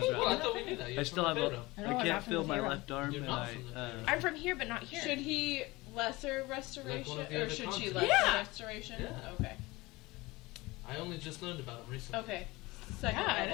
I thought we knew that. I You're still from have Pharaoh. I know, I I'm can't not from feel the my Pharaoh. left arm, You're and not from the Pharaoh. I'm from here, but not here. Should he lesser restoration? Like one of the or other should she continents. lesser Yeah. restoration? Yeah. Okay. I only just learned about him recently. Okay. Second Yeah, I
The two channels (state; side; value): quieter; right; 21.7 dB